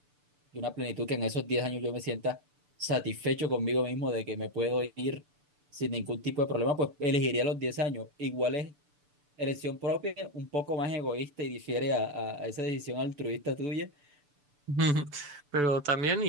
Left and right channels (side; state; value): left; late; 6.9 ms